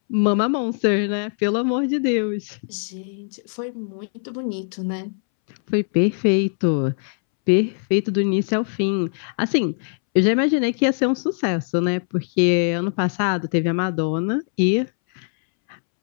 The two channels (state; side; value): silent; right; 64 dB below the other